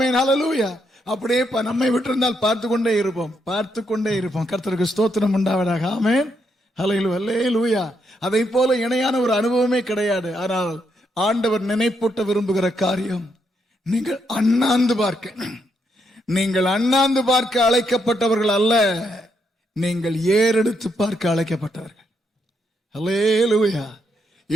Hallelujah. அப்படியே நம்மை விட்டிருந்தால் பார்த்து கொண்டே இருப்போம். கர்த்தருக்கு ஸ்தோத்திரம் உண்டாவதாக. ஆமென். ஹல்லேலூயா. அதை போல இணையான ஒரு அனுபவமே கிடையாது. ஆனால் ஆண்டவர் நினைப்பூட்ட விரும்புகிற காரியம், நீங்கள் அண்ணாந்து பார்க்க அழைக்கப்பட்டவர்கள் அல்ல, நீங்கள் ஏறெடுத்து பார்க்க அழைக்கப்பட்டவர்கள். ஹல்லேலூயா.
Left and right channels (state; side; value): normal; both; correlation 0.78